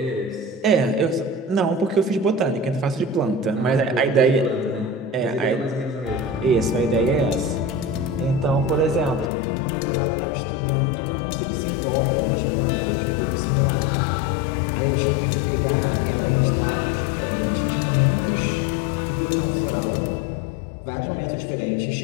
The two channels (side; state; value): right; drops out; at 9.3 s